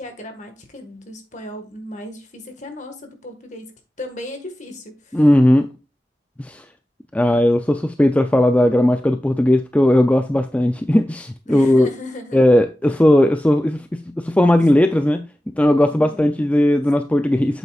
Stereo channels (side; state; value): both; normal; correlation 0.94